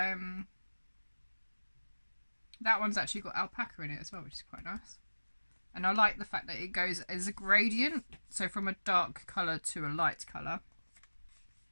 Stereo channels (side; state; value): both; inverted; correlation -1.00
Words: that one's actually got alpaca in it as well, which is quite nice. And I like the fact that it goes as a gradient, so from a dark colour to a light colour.